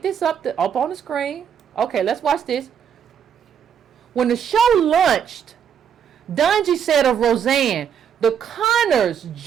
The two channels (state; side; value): quieter; left; 8.2 dB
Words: this up on the screen. Okay, let's watch this. When the show launched, Dungy said of Roseanne, the Connors'